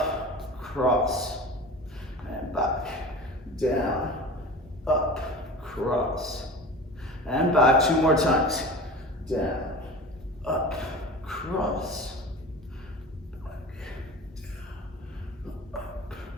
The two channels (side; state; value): both; normal; correlation 0.35